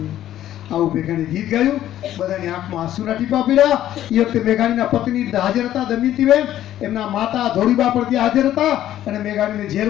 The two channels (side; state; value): right; quieter; 12.4 dB